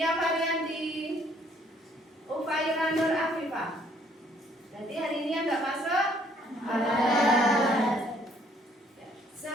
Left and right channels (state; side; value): normal; both; correlation 0.64